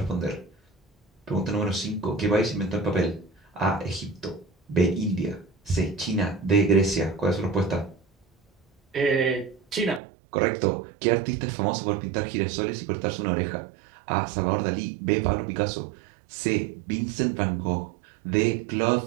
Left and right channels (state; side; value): drops out; left; at 10.0 s